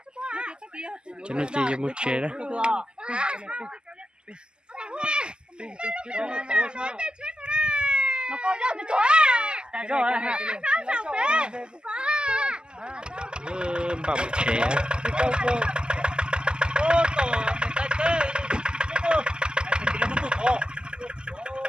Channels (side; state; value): left; late; 0.047 ms